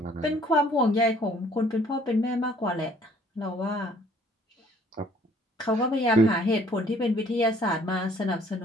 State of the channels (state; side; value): normal; both; correlation 0.58